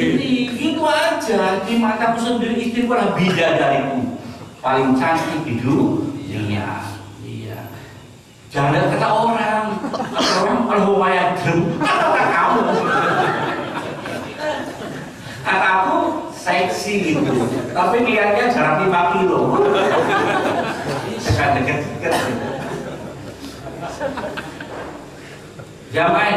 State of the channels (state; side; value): identical; both; correlation 1.00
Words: Gitu aja, di mataku sendiri istriku adalah bidadariku paling cantik di dunia. Iya. Jangan kata orang kalau lumayan kata kamu. Kataku seksi gitu, tapi lihatnya jarak 5 kilo. Dekat-dekat.